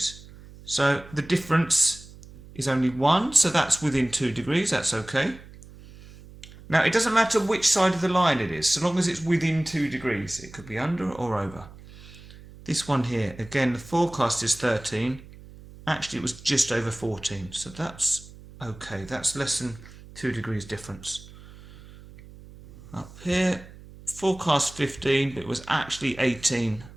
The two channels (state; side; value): noise; right; hum, 19 dB below the sound